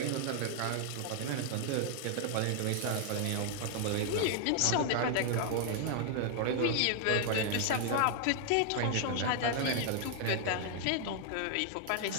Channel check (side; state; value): both; different; correlation 0.00